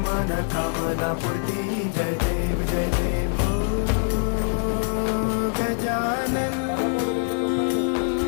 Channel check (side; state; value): right; silent; 63 dB below the other